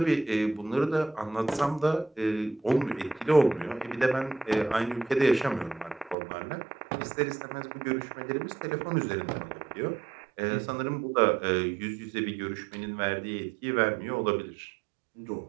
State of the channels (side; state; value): left; drops out; at 6.2 s